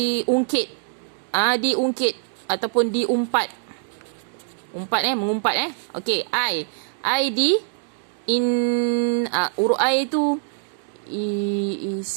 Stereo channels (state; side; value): silent; left; digital silence